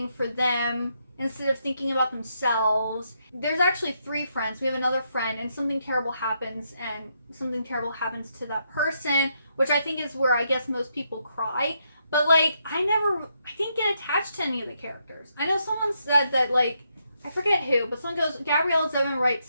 for them instead of thinking about themselves. There's actually 3 friends. We have another friend, and something terrible happens, and something terrible happens to that person, which I think is where I guess most people cry. But like, I didn't get attached to any of the characters. I know someone said that like, I forget who, but someone goes, Gabrielle Zevin writes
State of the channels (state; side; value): inverted; both; correlation -0.78